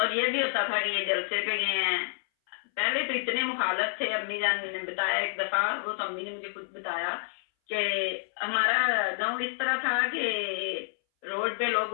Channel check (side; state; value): right; silent; 59 dB below the other